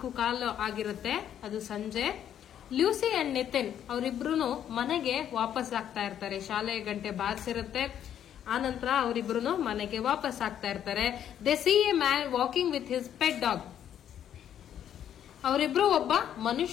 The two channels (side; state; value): right; quieter; 10.0 dB